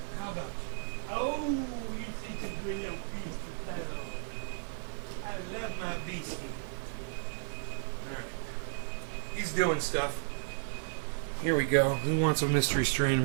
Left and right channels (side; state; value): left; silent; digital silence